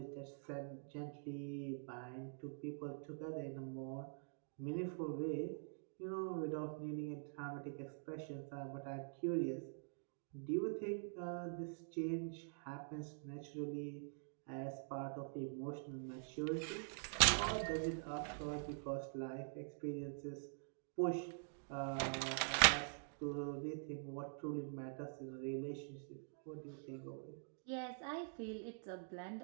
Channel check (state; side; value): silent; left; digital silence